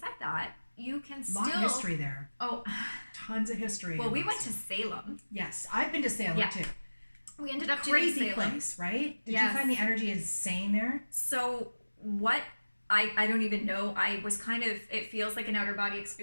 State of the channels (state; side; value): inverted; both; correlation -1.00